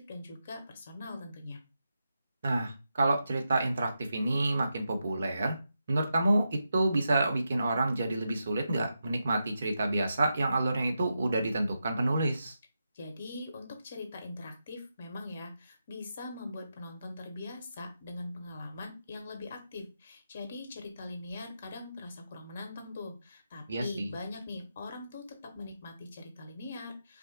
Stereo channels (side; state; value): both; inverted; correlation -0.87